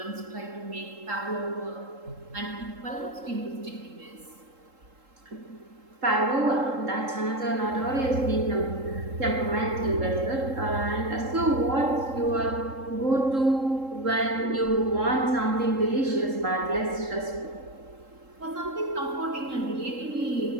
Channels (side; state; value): left; late; 3.7 ms